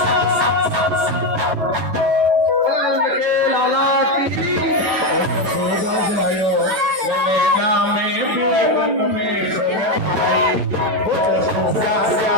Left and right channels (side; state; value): left; late; 9.4 ms